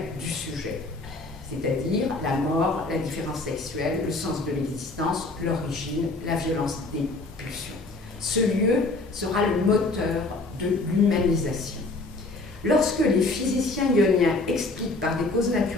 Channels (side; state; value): right; quieter; 3.2 dB